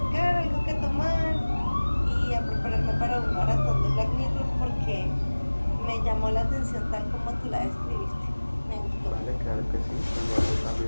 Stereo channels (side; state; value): both; inverted; correlation -1.00